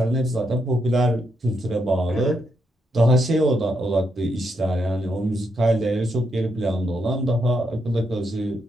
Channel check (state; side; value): normal; both; correlation 0.80